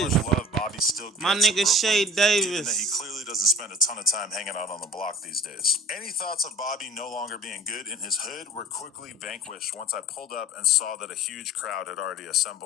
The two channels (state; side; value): normal; both; correlation 0.43